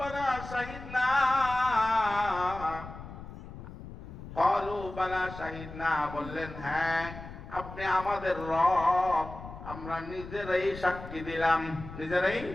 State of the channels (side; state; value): left; noise; rumble, 13 dB below the sound